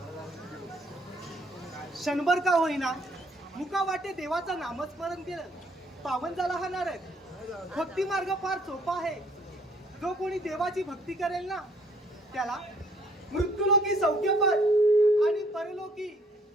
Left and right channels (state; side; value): normal; both; correlation 0.63